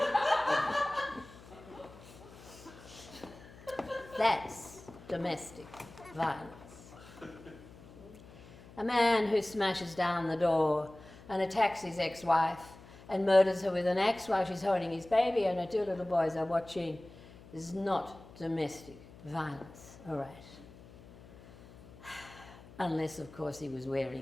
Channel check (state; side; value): noise; left; hum, 20 dB below the sound